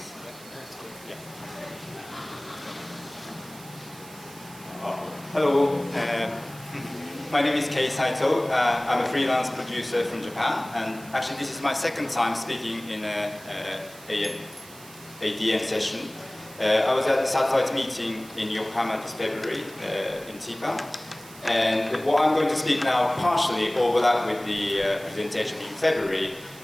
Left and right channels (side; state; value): right; noise; hiss, 19 dB below the sound